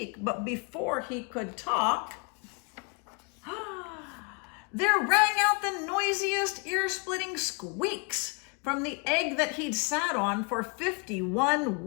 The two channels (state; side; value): quieter; right; 33.2 dB